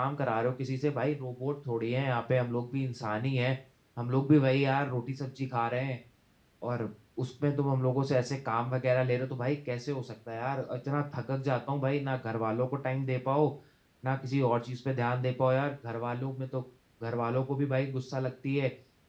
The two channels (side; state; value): both; identical; correlation 1.00